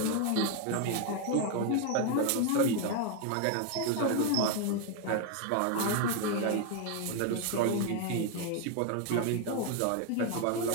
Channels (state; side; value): different; both; correlation 0.01